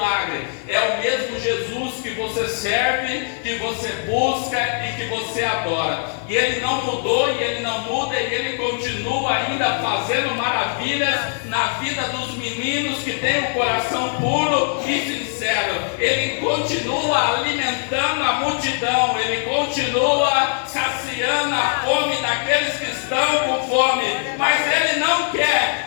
é o mesmo Jesus que você serve, que você busca e que você adora. E Ele não mudou, e Ele não muda, e Ele continua ainda fazendo maravilhas na vida dos meninos que têm um coração puro e sincero. Ele continua alimentando a multidão, Ele continua saciando a fome daqueles que estão com fome, mas Ele não quer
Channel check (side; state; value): right; silent; digital silence